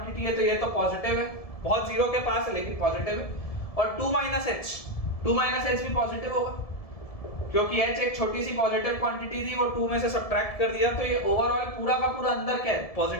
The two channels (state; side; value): late; right; 1.7 ms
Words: है, तो ये तो पॉजिटिव है, बहुत 0 के पास है लेकिन पॉजिटिव है, और 2 माइनस h भी पॉजिटिव होगा, क्योंकि h एक छोटी सी पॉजिटिव क्वांटिटी थी, वो 2 में से सब्ट्रैक्ट कर दिया, तो ये ओवरऑल पूरा का पूरा अंदर क्या है?